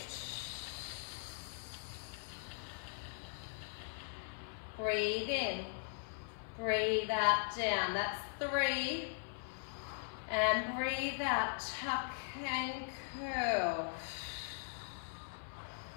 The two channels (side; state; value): right; silent; 51 dB below the other